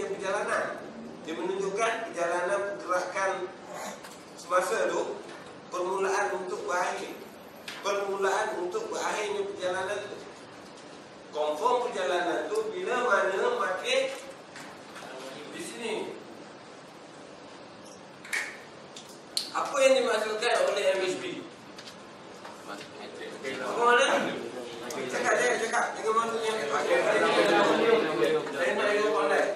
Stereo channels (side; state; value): both; identical; correlation 1.00